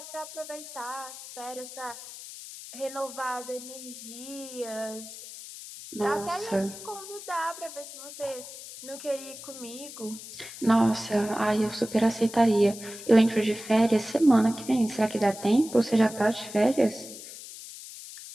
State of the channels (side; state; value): left; noise; hiss, 13 dB below the sound